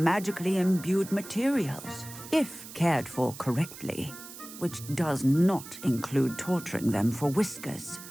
imbued materials, if cared for correctly, which does not include torturing them for whiskers.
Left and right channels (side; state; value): right; noise; hiss, 14 dB below the sound